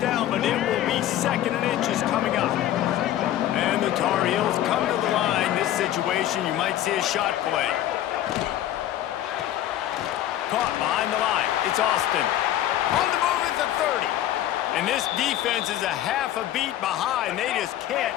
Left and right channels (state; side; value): quieter; right; 12.6 dB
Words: but it will be 2nd and inches coming up. And the Tar Heels come to the line. This situation, you might see a shot play. Caught behind the line. It's Austin. On the move at the 30. And this defense is a half a beat behind. They just can't